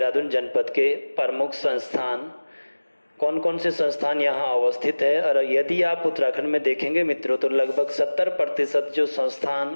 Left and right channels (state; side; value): inverted; both; correlation -1.00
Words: जनपद के प्रमुख संस्थान, कौन कौन से संस्थान यहाँ अवस्थित है। और यदि आप उत्तराखंड में देखेंगे मित्रों, तो लगभग 70% जो संस्थान